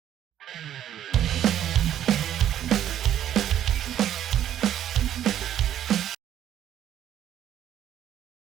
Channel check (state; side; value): quieter; left; 11.0 dB